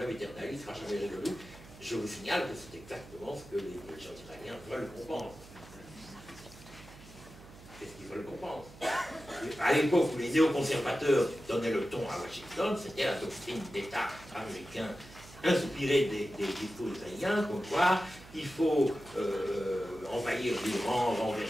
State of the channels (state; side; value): noise; right; hum, 19 dB below the sound